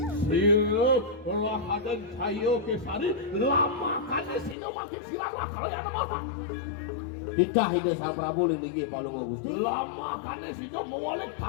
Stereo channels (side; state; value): right; drops out; at 4.5 s